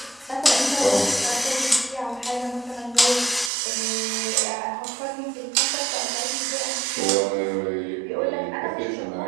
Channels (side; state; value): left; drops out; at 3.5 s